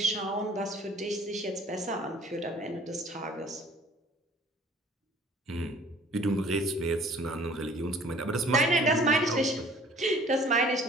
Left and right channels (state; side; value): normal; both; correlation 0.52